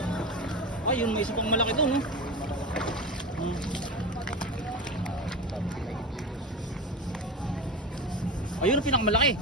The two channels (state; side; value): normal; both; correlation 0.24